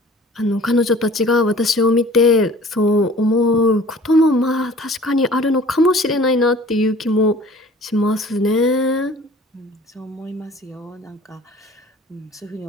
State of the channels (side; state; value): both; normal; correlation 0.48